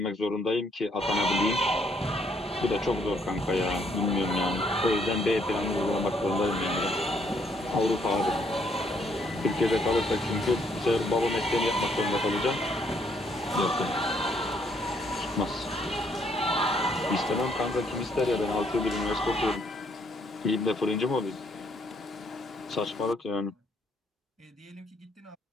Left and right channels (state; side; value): normal; both; correlation 0.69